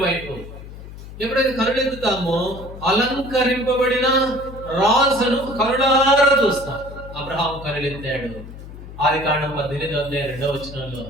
వైపు. ఎప్పుడైతే కనులెత్తుతామో అలంకరింపబడిన రాజును కనులారా చూస్తాం. అబ్రహాం కనులెత్తాడు. ఆదికాండం 18:2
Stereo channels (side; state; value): left; noise; hum, 14 dB below the sound